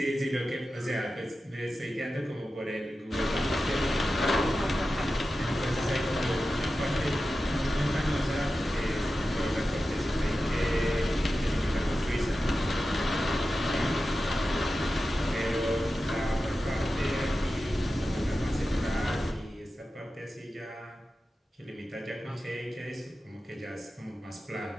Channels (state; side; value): normal; both; correlation 0.93